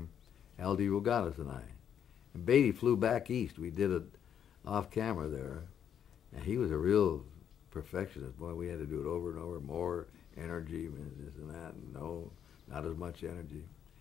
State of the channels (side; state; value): right; quieter; 8.9 dB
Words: L.D. Rogatis and I. And Beatty flew back east. We did it off camera there. And he was a real perfectionist. Boy, we had to do it over and over, more energy, and this and that. And no, not as much energy.